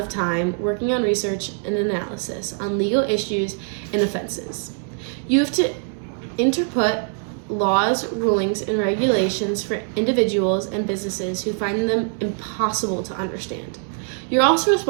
time working on research and analysis on legal issues and offenses. You have to interpret laws, rulings, and regulations for individuals and businesses who find them impossible to understand. You're also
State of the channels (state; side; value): silent; left; 60 dB below the other